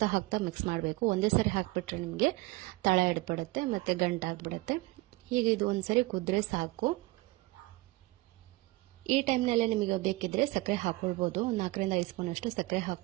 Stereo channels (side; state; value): left; quieter; 21.3 dB